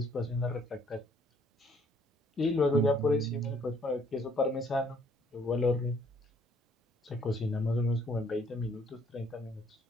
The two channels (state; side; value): normal; both; correlation 0.64